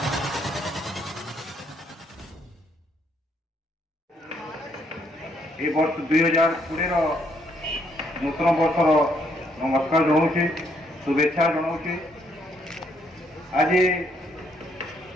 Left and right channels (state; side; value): normal; both; correlation 0.71